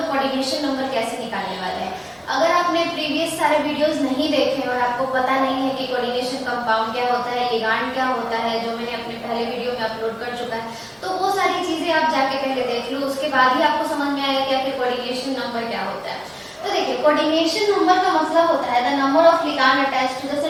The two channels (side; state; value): both; identical; correlation 1.00